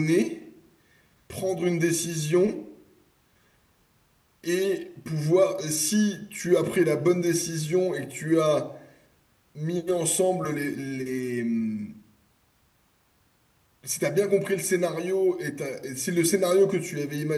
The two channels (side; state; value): both; identical; correlation 1.00